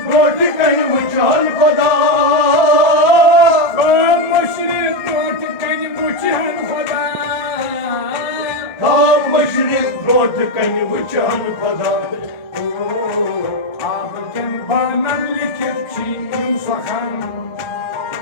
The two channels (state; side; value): late; right; 1.3 ms